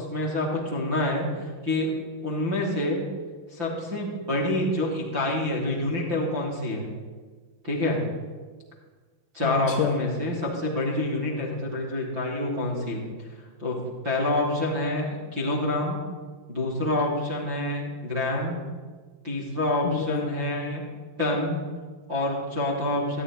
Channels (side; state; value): left; late; 5.8 ms